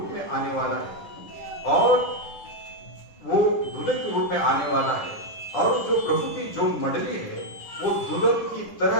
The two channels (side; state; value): right; late; 9.9 ms